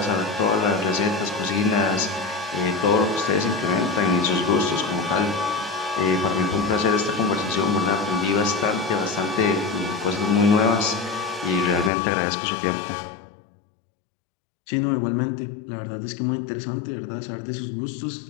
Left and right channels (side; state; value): right; drops out; at 11.9 s